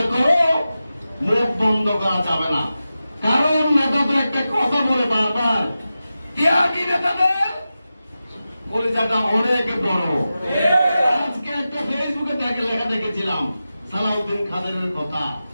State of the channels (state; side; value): inverted; both; correlation -0.93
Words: করো মুখ বন্ধ করা যাবে না। কারণ নেতাদের একটা কথা বলে বারবার, ত্যাগী নেতাদের কলিজাটা অনেক বড়। আজকে একটা ফেসবুকে লেখা দেখেছিলাম সালাউদ্দিন খাদেরের কথা।